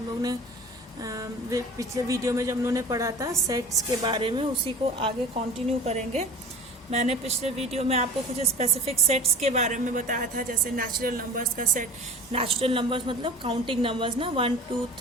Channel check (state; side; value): normal; both; correlation 0.39